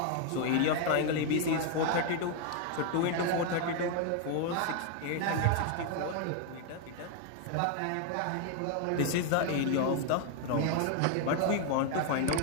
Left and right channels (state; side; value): different; both; correlation 0.00